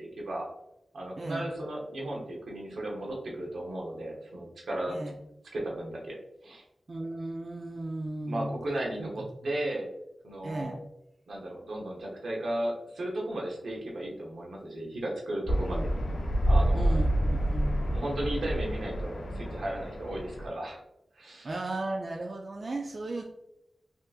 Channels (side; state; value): both; normal; correlation 0.95